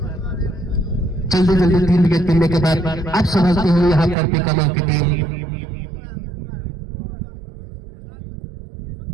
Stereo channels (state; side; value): drops out; left; at 4.2 s